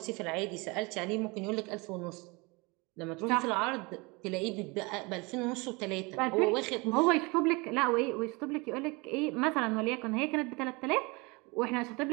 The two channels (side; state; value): left; quieter; 26.8 dB